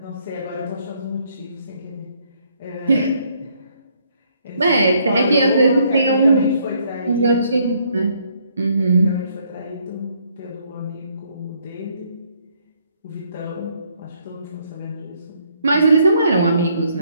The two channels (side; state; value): both; inverted; correlation -0.69